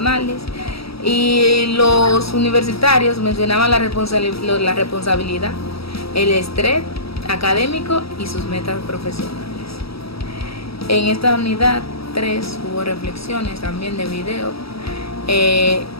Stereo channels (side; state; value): right; late; 0.76 ms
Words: y los universitarios mencionaban la responsabilidad, el estrés académico y sus metas profesionales. En esta unidad 3 hubo reflexiones también de video,